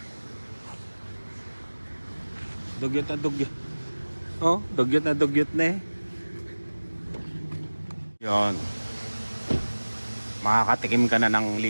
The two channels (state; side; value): inverted; both; correlation -1.00